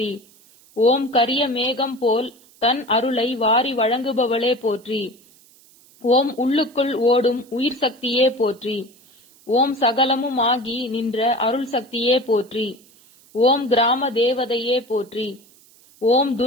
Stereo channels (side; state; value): right; noise; hiss, 28 dB below the sound